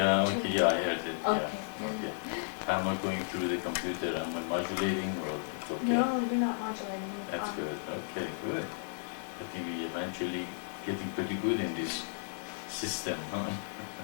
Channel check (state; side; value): silent; right; digital silence